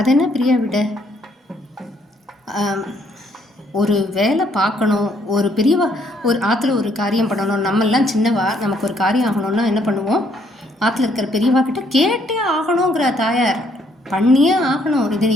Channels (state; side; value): normal; both; correlation 0.68